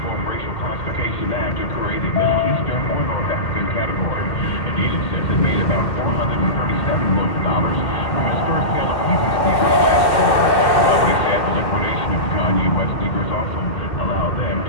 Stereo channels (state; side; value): late; right; 2.1 ms